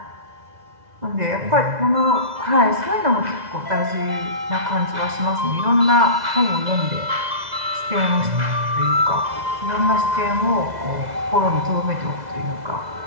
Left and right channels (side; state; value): left; late; 2.0 ms